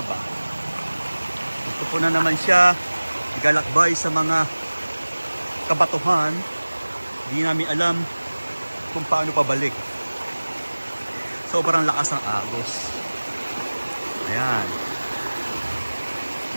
Gusto po na naman siya igalakbay sa mga kabatuhan. Di namin alam kung paano pabalik. Sobrang lakas ng agos. Ayan.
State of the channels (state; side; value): inverted; both; correlation -1.00